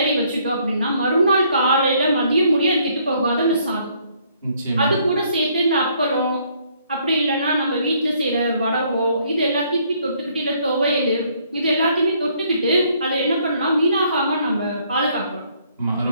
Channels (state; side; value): inverted; both; correlation -0.66